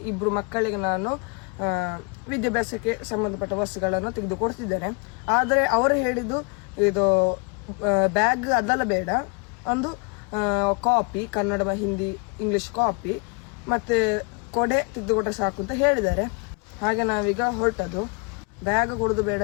ಇಬ್ಬರು ಮಕ್ಕಳಿಗೆ ನಾನು ವಿದ್ಯಾಭ್ಯಾಸಕ್ಕೆ ಸಂಬಂಧಪಟ್ಟ ವಸ್ತುಗಳನ್ನು ತೆಗೆದುಕೊಡ್ತಿದ್ದೇನೆ. ಆದರೆ ಅವರು ಹೇಳಿದ್ದು ಇದು ಬ್ಯಾಗ್ ಅದೆಲ್ಲ ಬೇಡ, ಒಂದು copy, Kannada, Hindi, English copy ಮತ್ತೆ ಕೊಡೆ ತೆಗೆದುಕೊಟ್ರೆ ಸಾಕು ಅಂತ ಹೇಳಿದ್ದಾರೆ. ಹಾಗೆ ನಾವೀಗ ಹೊರಟದ್ದು. ಬ್ಯಾಗ್ ಕೊಡುದು ಬೇಡ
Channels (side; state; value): right; quieter; 33.0 dB